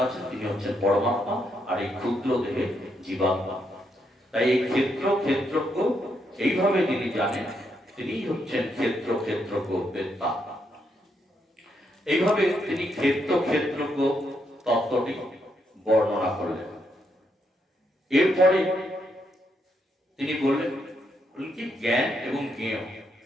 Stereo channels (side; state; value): both; normal; correlation 0.78